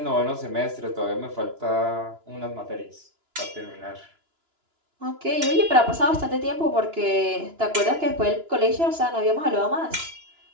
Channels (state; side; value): late; left; 2.9 ms